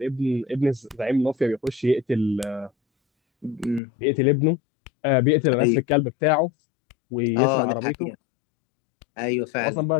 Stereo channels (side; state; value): right; drops out; at 3.8 s